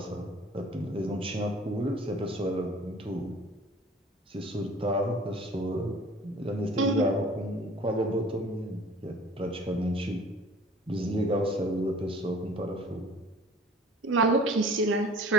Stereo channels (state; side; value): normal; both; correlation 0.48